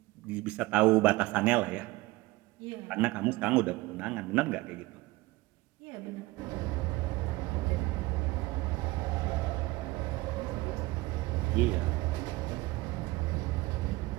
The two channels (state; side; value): quieter; left; 20.8 dB